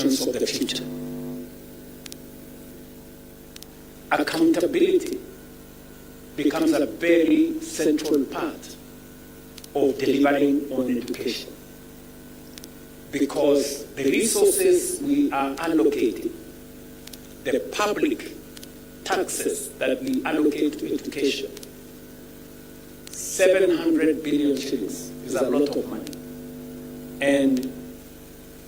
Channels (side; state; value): both; identical; correlation 1.00